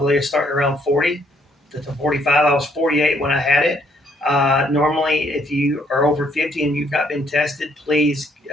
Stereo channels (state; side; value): normal; both; correlation 0.68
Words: starting around 40 to 45. I was 48 when I had it. Normally, if you are over 50 and you've not been tested, please